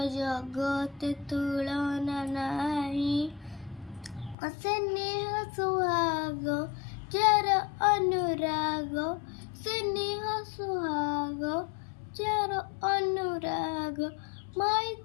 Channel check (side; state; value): right; drops out; at 4.4 s